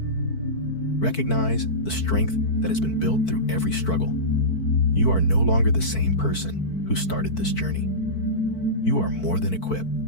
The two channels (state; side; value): late; right; 4.5 ms